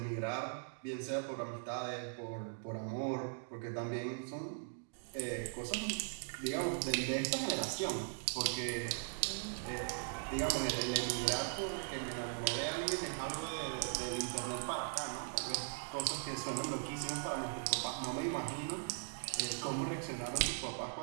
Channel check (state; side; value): silent; left; digital silence